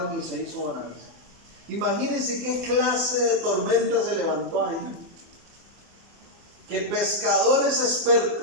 y se hizo bonanza. Imagínense qué clase de tormenta se levantó ahí. Que pescadores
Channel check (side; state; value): left; late; 24 ms